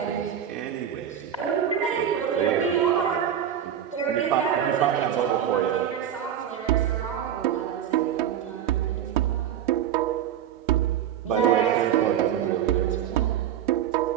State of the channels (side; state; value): left; quieter; 9.8 dB